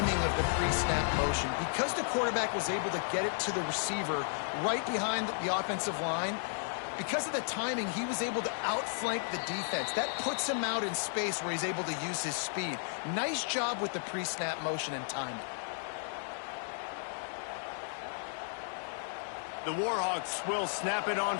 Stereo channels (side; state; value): right; silent; digital silence